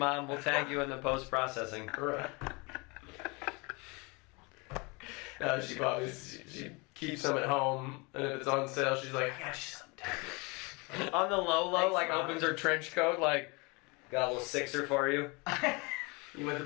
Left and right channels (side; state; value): right; quieter; 28.3 dB